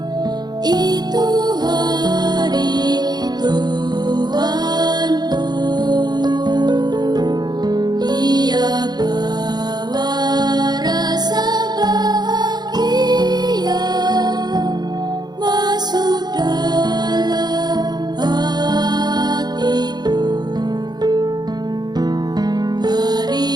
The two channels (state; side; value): late; left; 0.20 ms